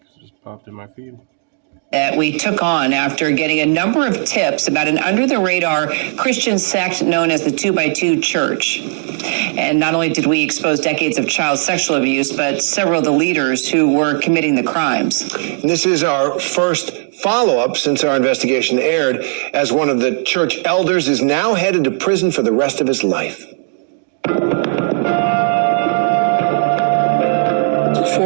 it just popped in my feed. That we took on after getting a number of tips about an under-the-radar Christian sect known as the 2x2 Church. And not only did we expose decades of child sexual abuse, but several of the leaders who were committing the crimes. This is our first follow-up since our investigation aired, as one of the church elders is now headed to prison for the rest of his life.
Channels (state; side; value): silent; left; digital silence